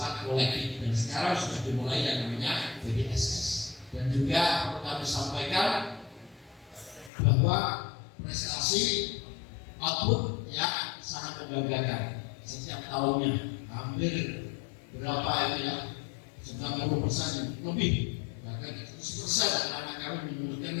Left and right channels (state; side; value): drops out; right; at 7.1 s